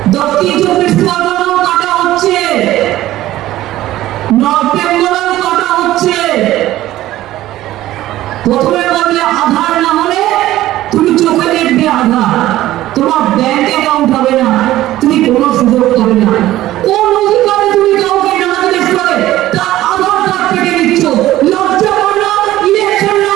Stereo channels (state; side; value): quieter; left; 15.0 dB